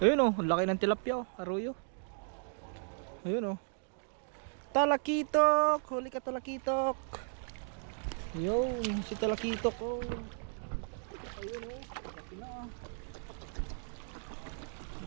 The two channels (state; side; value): silent; left; 54 dB below the other